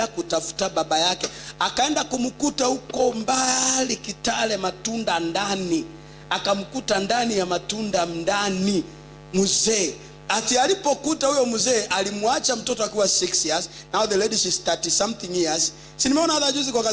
kutafuta baba yake. Akaenda kumkuta huko mbali Kitale, Matunda ndani. Akamkuta ndani ya Matunda ndani mzee. Ati alipokuta huyo mzee, alimwacha mtoto akiwa 6 years. Now the lady is 30 something years. Si nimeona hata juzi kwa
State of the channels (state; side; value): identical; both; correlation 1.00